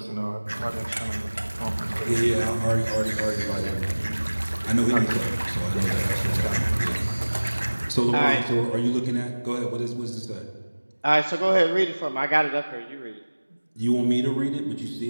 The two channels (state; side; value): inverted; both; correlation -1.00